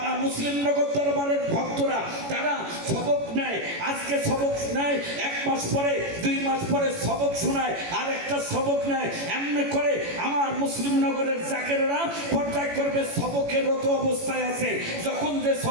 মুসলিমনগর দরবারের ভক্তরা তারা সবক নেয়, আজকে সবক নেয়, 1 মাস পরে 2 মাস পরে সবক শোনায়, আর একটা সবক নেয়। এমনি করে আমার মুসলিমনগরের জাকেরেরা পর্যায় করবে সবকেরত অবস্থায় আছে। যখন যে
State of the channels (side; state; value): left; late; 18 ms